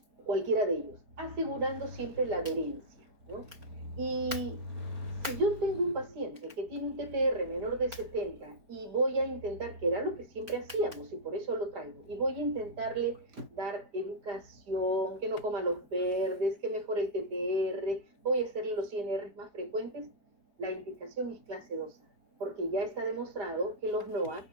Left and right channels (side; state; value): left; late; 4.4 ms